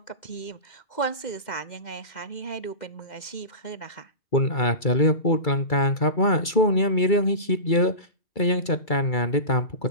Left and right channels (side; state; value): right; late; 2.3 ms